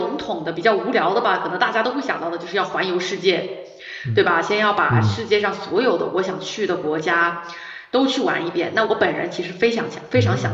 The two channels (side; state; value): both; identical; correlation 1.00